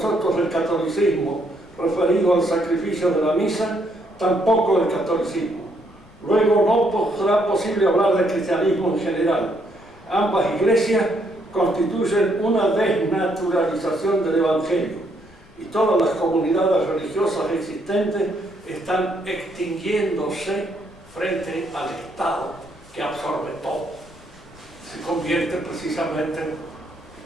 del catolicismo, referido al sacrificio de la misa, tampoco del catolicismo. Luego no será posible hablar de cristianismo en general. Ambas iglesias constituyen una desnaturalización del Evangelio y todas las comunidades religiosas existentes están extinguiéndose frente al Estado que absorbe todo. Se convierte precisamente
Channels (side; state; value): left; noise; rumble, 25 dB below the sound